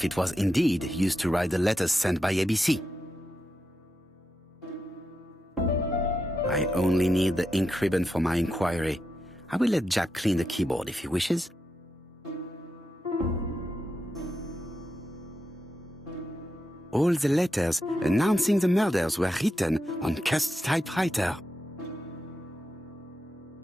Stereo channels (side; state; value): both; normal; correlation 0.86